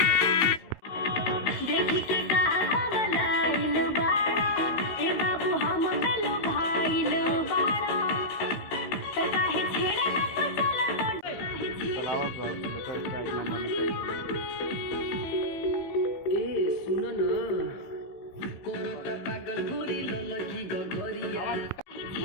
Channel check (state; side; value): late; right; 16 ms